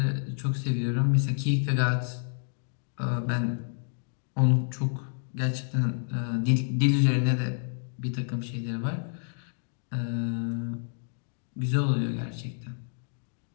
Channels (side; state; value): right; silent; digital silence